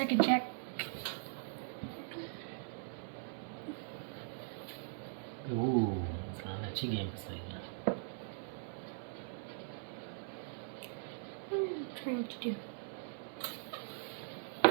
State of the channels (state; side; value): silent; left; digital silence